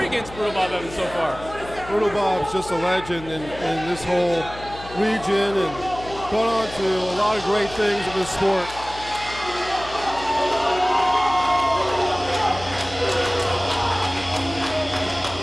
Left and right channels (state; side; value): noise; left; hum, 15 dB below the sound